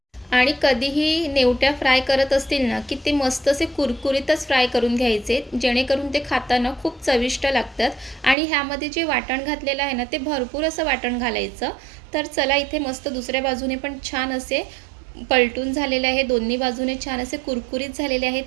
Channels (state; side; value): drops out; left; at 8.3 s